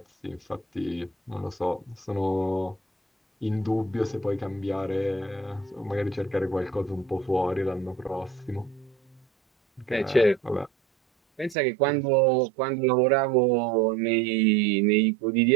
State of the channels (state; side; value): drops out; left; at 11.6 s